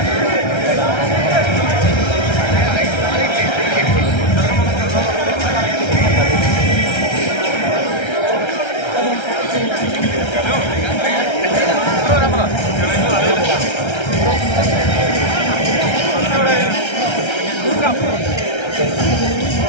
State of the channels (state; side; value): late; right; 1.3 ms